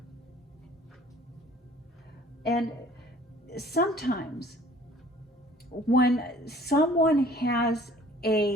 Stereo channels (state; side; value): normal; both; correlation 0.53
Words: And sometimes when someone has